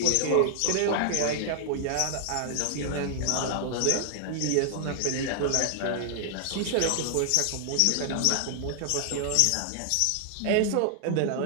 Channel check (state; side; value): different; both; correlation 0.00